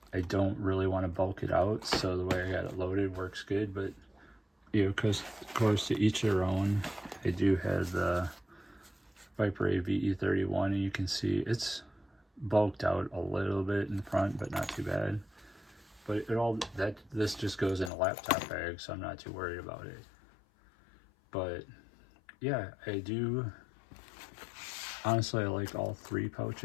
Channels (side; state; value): right; drops out; at 17.9 s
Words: I don't really want to bulk it out, so the way I got it loaded works good. But because of course to each their own. I do have the Viper A VE31, and you can see it's bulked out a little bit in front, but not too bad. But this just goes in a laptop bag, so I'm not too worried about it. But yeah, I do, honestly, I like all three